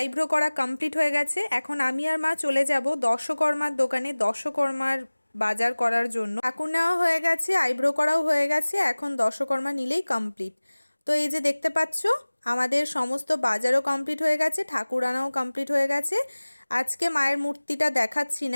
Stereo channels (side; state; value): both; inverted; correlation -1.00